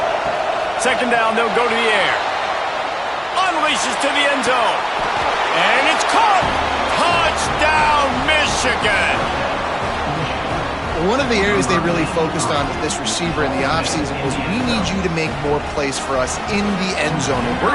Second down, they'll go to the air. Unleashes to the end zone. And it's caught. Touchdown, Michigan. One of the areas they really focused on with this receiver in the offseason was we need you to make more plays for us in the end zone. When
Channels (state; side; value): identical; both; correlation 1.00